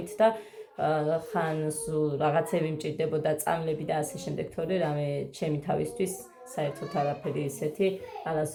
და ხან რაღაცები მჭირდებოდა, წამლები და ასე შემდეგ, თორე რამე ჩემი თავისთვის საერთოდ არაფერი ისეთი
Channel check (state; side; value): identical; both; correlation 1.00